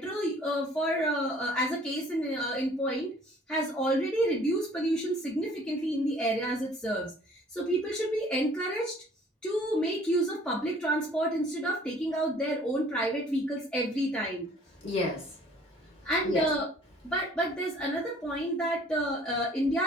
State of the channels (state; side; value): normal; both; correlation 0.55